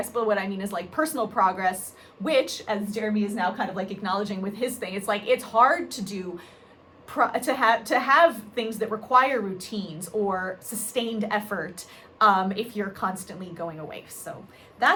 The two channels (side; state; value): both; identical; correlation 1.00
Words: But what I mean is like personal progress, which, as Jeremy is now kind of like acknowledging with his thing, it's like, it's hard to do to have things that require routines or sustained effort if you're constantly going away. So